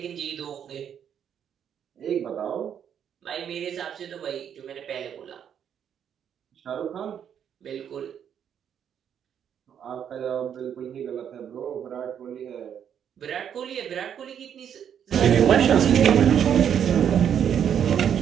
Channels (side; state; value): left; quieter; 8.7 dB